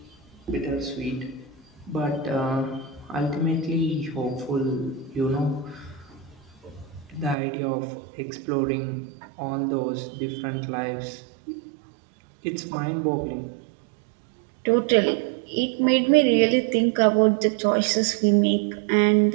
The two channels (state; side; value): drops out; left; at 7.4 s